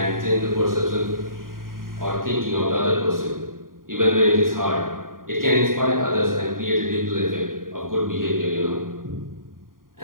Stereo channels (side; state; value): left; late; 0.91 ms